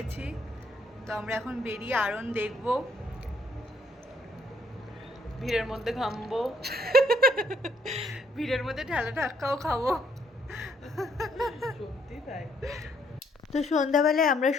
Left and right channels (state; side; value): normal; both; correlation 0.69